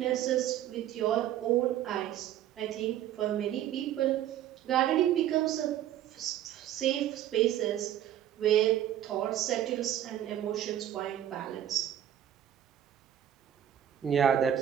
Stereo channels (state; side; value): quieter; left; 11.4 dB